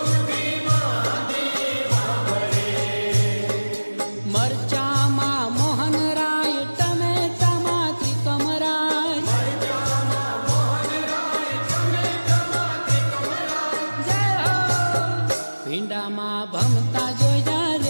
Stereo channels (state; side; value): inverted; both; correlation -1.00